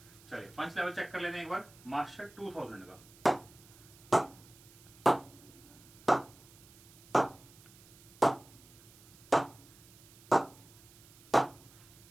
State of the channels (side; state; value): right; noise; hiss, 23 dB below the sound